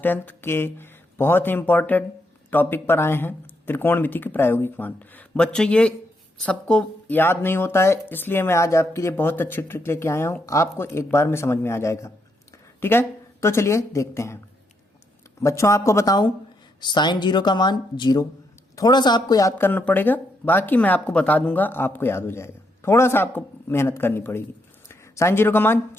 के बहुत ही इम्पोर्टेंट टॉपिक पर आए हैं, त्रिकोणमिति के प्रायोगिक मान। बच्चों, ये सबको याद नहीं होता है, इसलिए मैं आज आपके लिए बहुत अच्छी ट्रिक लेके आया हूँ। आपको एक बार में समझ में आ जाएगा। ठीक है, तो चलिए देखते हैं। बच्चों, आपको बताऊं, साइन जीरो का मान जीरो। थोड़ा सा आपको याद करना पड़ेगा, बाकी मैं आपको बता दूंगा, आपको याद हो जाएगा। थोड़ा सा आपको मेहनत करनी पड़ेगी। साइन जीरो का मान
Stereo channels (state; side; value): normal; both; correlation 0.78